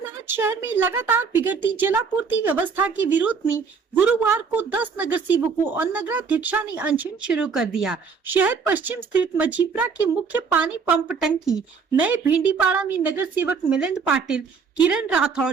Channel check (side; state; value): left; quieter; 5.6 dB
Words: शहर में लगातार बिगड़ती जलापूर्ति व्यवस्था के विरोध में गुरुवार को 10 नगर सेवकों और नगराध्यक्षा ने अनशन शुरू कर दिया। शहर पश्चिम स्थित मजीपरा के मुख्य पानी पंप टंकी नए भिंडीपाड़ा में नगर सेवक मिलिंद पाटिल, किरण राठौड़,